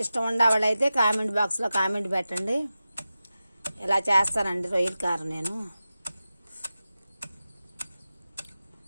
ఇష్టం ఉండేవాళ్ళైతే కామెంట్ బాక్స్లో కామెంట్ పెట్టండి. ఇలా చేస్తానండి రొయ్యల కారం నేను.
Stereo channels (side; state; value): both; inverted; correlation -0.94